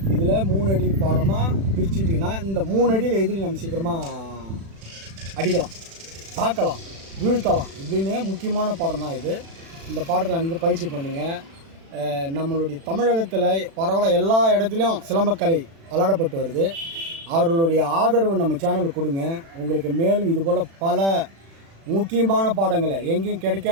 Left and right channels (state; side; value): late; left; 36 ms